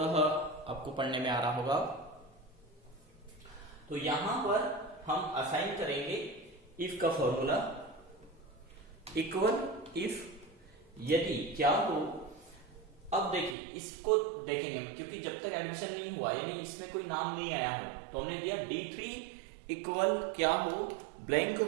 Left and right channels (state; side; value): drops out; left; at 13.6 s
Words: आपको पढ़ने में आ रहा होगा। तो यहां पर हम असाइन करेंगे इफ का फॉर्मूला, इक्वल इफ यदि क्या हो। अब देखिए, इसको देखेंगे क्योंकि जब तक एडमिशन नहीं हुआ, यानी इसमें कोई नाम नहीं आया हो, तो हमने दिया D3 इक्वल क्या हो, ब्लैंक